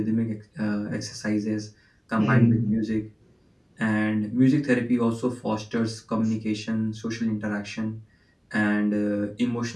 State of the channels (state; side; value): identical; both; correlation 1.00